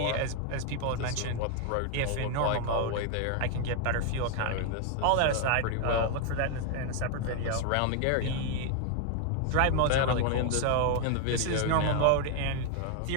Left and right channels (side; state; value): both; different; correlation 0.00